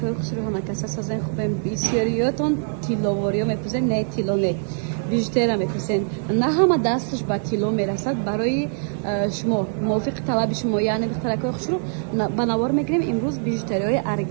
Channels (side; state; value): left; silent; digital silence